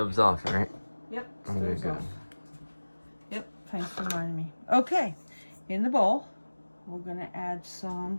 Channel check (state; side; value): inverted; both; correlation -1.00